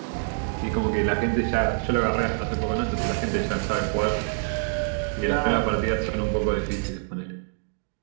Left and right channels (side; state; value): left; silent; digital silence